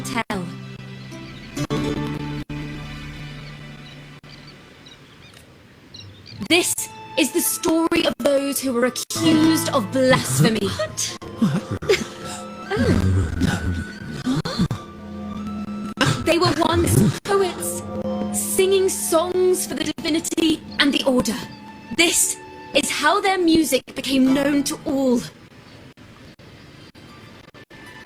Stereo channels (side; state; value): both; identical; correlation 1.00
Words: tell. This is the story of those who were accused of blasphemy. They were once poets, singing songs for the divinity and the order. This is how their music became known to all.